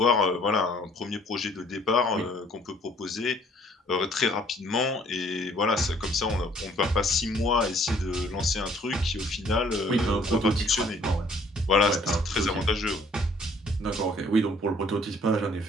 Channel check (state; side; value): normal; both; correlation 0.59